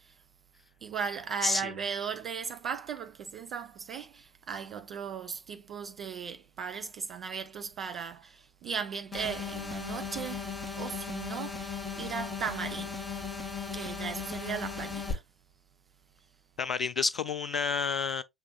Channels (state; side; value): normal; both; correlation 0.55